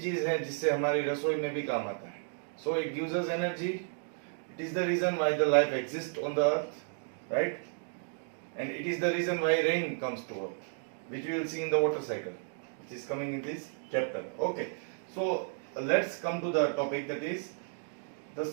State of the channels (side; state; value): left; silent; 56 dB below the other